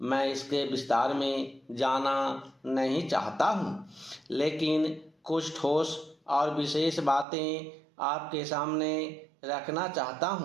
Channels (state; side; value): drops out; left; at 7.2 s